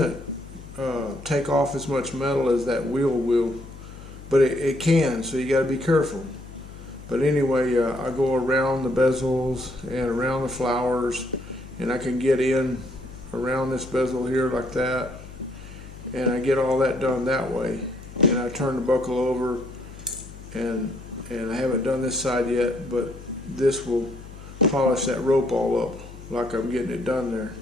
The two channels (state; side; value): noise; left; hum, 15 dB below the sound